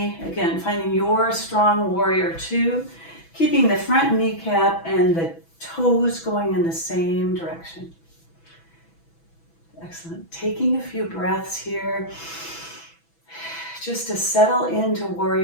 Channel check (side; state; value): right; late; 6.1 ms